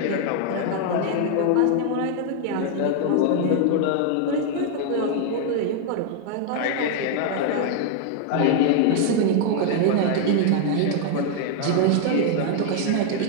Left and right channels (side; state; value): both; different; correlation 0.00